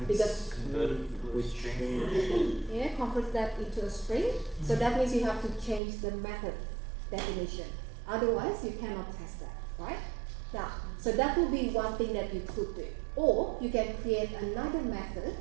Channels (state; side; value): drops out; left; at 5.8 s